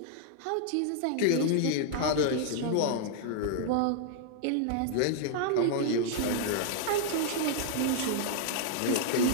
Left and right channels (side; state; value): both; different; correlation -0.01